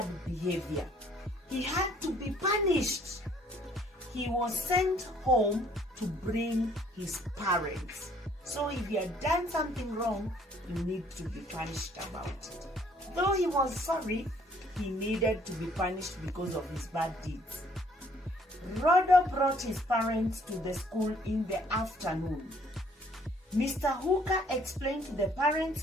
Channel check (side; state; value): both; normal; correlation 0.61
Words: behavior. He had to be punished. He was sent home to bring his parents. So if you had done something wrong, you need to be punished about it. Though he was sorry, he needed to be punished because of his bad deeds. Rodo brought his parents to the school in the afternoon. Mr. Hooker explained to the